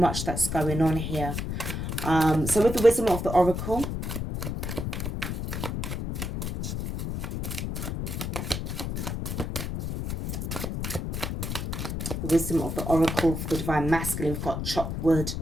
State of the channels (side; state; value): left; noise; rumble, 3 dB below the sound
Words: that's going on here. So with the Wisdom of the Oracle, the Wisdom of the Oracle for the Divine Masculine, we've got chop wood.